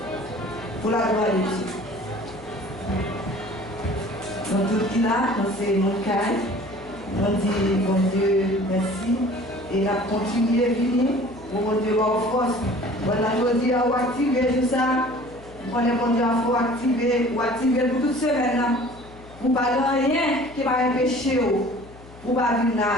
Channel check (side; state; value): left; noise; hum, 20 dB below the sound